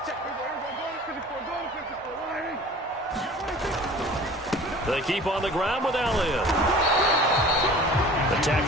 check. 54, They keep on the ground with Elliott. The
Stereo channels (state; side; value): normal; both; correlation 0.44